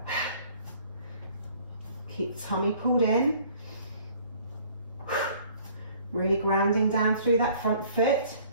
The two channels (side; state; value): both; inverted; correlation -0.55